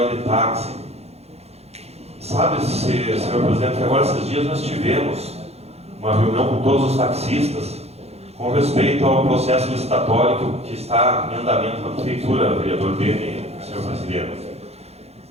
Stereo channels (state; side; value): late; left; 0.30 ms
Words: de táxi. Sabe, senhor presidente, que agora esses dias nós tivemos uma reunião com todos os taxistas com respeito ao processo licitatório que está em andamento na prefeitura, vereador Beni, senhor presidente.